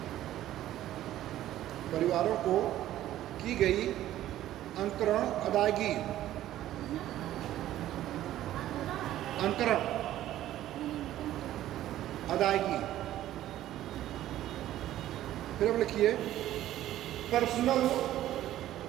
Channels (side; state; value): left; quieter; 13.4 dB